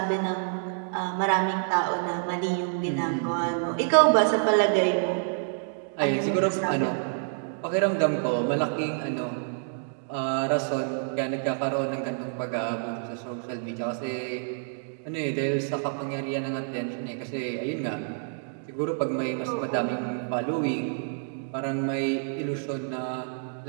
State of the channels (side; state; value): left; silent; digital silence